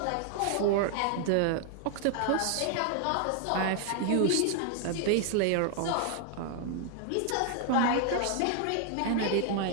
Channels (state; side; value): different; both; correlation 0.00